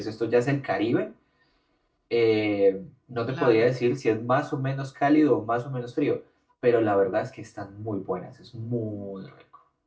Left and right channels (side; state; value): both; identical; correlation 1.00